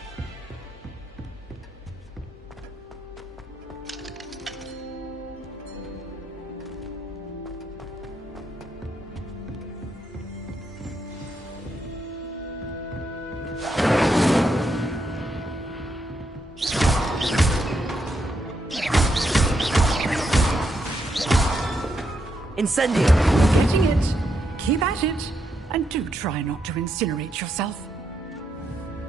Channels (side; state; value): both; normal; correlation 0.80